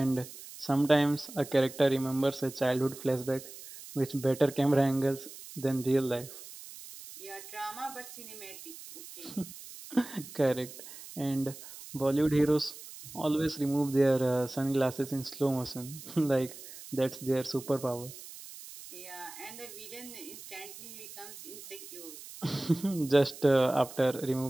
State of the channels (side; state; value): right; noise; hiss, 15 dB below the sound